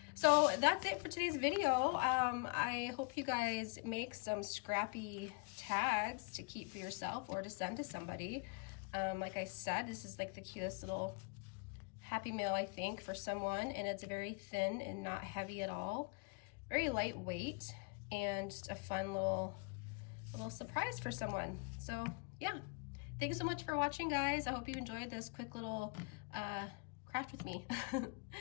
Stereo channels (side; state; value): right; quieter; 31.3 dB